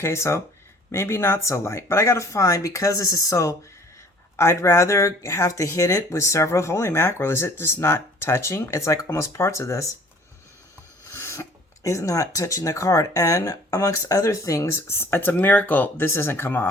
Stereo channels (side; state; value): both; normal; correlation 0.52